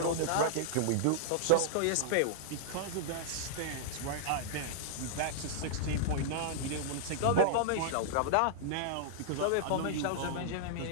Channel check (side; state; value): both; different; correlation -0.01